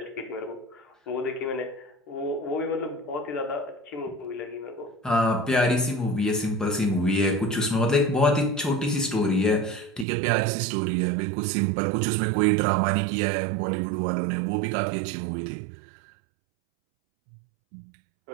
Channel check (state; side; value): drops out; left; at 10.1 s